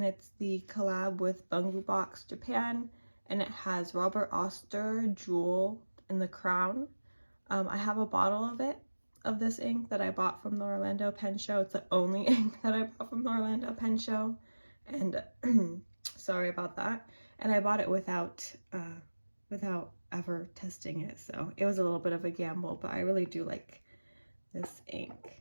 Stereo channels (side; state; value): both; inverted; correlation -1.00